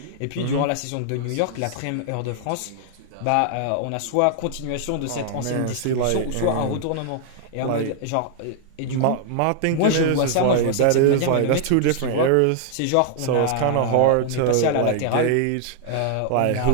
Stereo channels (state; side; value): different; both; correlation -0.01